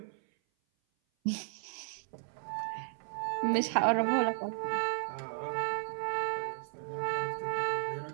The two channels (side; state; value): left; silent; 55 dB below the other